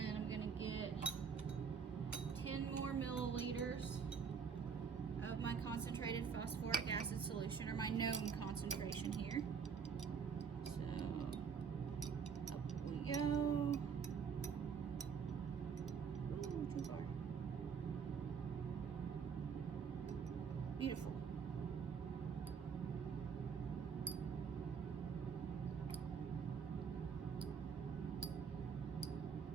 I'm going to get 10 more milliliters of my concentrated phosphoric acid solution, or my known concentration here. So, up we go. Ooh, too far. Beautiful.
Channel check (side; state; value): left; quieter; 6.4 dB